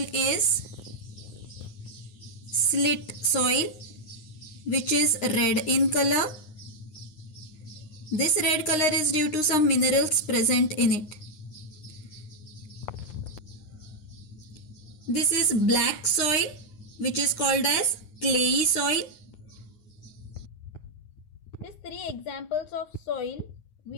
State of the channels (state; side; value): late; right; 9.7 ms